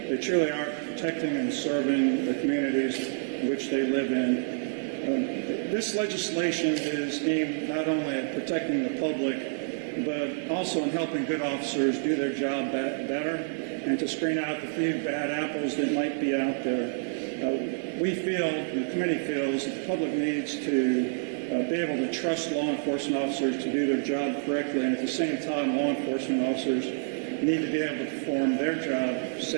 They truly are protecting and serving the communities which they live in. This legislation is aimed not only at protecting the public, but also in helping good officers do their job better and to screen out the few bad apples that might be out there. We feel, the committee feels, that the public needs to be able to trust law enforcement officers to do their job correctly, and at the same time, law enforcement officers need to be able to perform their job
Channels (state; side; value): silent; left; digital silence